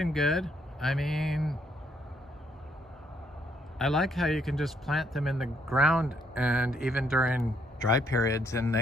good. I mean, I like how you can just plant them in the ground, and even during dry periods, and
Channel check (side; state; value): both; normal; correlation 0.71